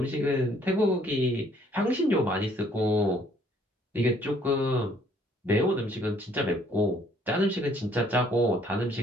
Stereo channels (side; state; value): both; normal; correlation 0.63